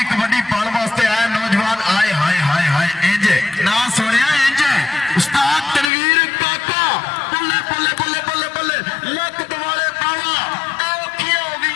कबड्डी पाने वास्ते आया नौजवान। आए हाय हाय हाय इंज ना सुनिया इंज उस्ताद तनवीर काका बल्ले बल्ले बल्ले बल्ले बल्ले लक दवाले पावा औखियां हो गई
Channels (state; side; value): drops out; right; at 5.9 s